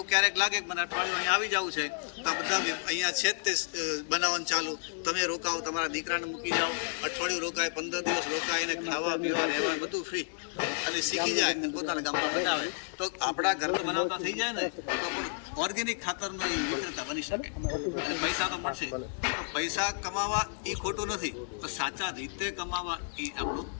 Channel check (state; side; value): silent; right; digital silence